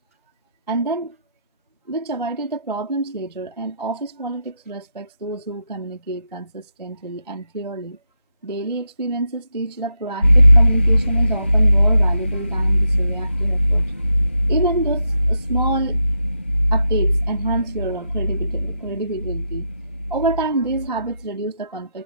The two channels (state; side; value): inverted; both; correlation -0.83